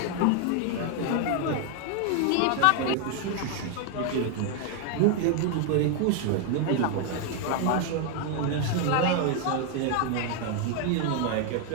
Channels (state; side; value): different; both; correlation 0.01